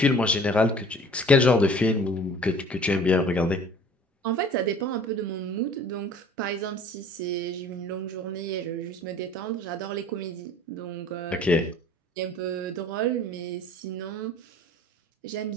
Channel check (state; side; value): normal; both; correlation 0.48